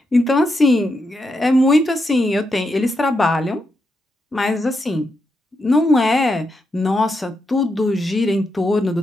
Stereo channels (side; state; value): both; normal; correlation 0.84